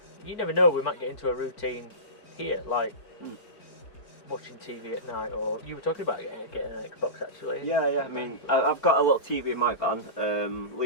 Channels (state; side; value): late; right; 4.4 ms